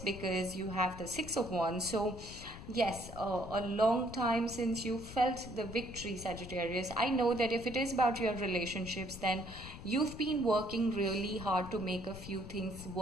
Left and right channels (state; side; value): noise; left; rumble, 12 dB below the sound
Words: you have the Six of Wands. So yes, a long time since you felt the victory, Sagittarius. I know that if it is about your relationships, then you've been working really hard to make a few things